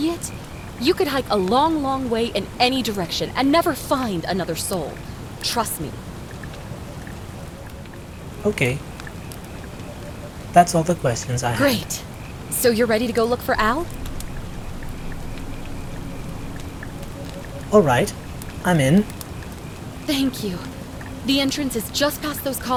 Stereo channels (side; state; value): both; identical; correlation 1.00